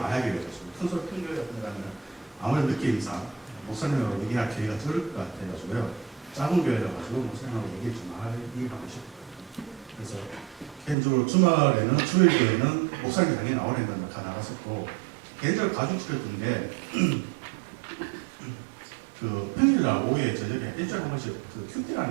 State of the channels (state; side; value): drops out; left; at 11.0 s